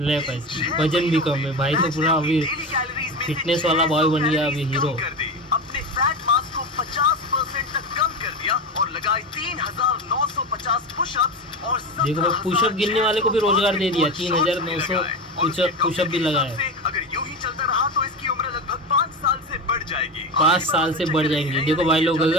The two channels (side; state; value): both; normal; correlation 0.22